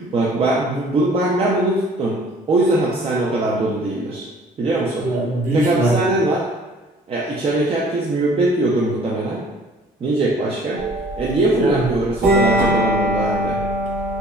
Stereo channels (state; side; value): normal; both; correlation 0.53